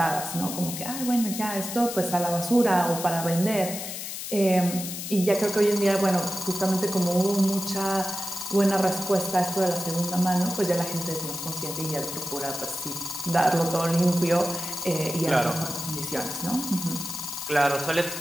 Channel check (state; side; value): noise; left; hiss, 7 dB below the sound